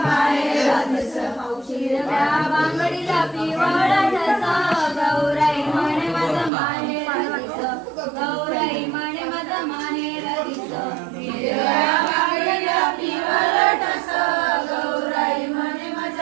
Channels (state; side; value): drops out; left; at 6.5 s